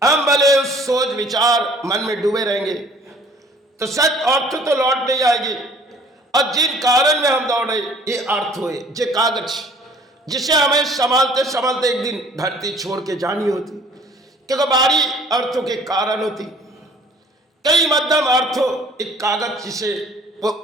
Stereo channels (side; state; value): both; normal; correlation 0.54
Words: हम भले उस सोच विचार मन में डूबे रहेंगे तो सच अर्थ तो लौट नहीं आएगी। और जिन कारण में हम दौड़े ये अर्थ हुए, ये कागज जिसे हमें संभालते संभालते एक दिन धरती छोड़ के जानी होती, क्योंकि बारी अर्थों के कारण होती। कई मध्यम अर्थों एक कागज जिसे वो